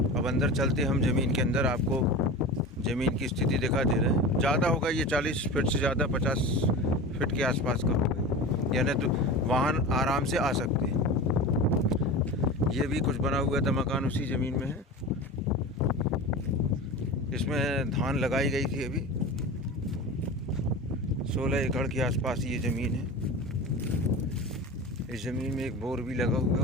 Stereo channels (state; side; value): normal; both; correlation 0.31